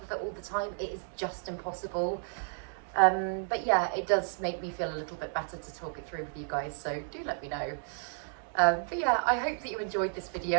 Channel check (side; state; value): left; silent; 56 dB below the other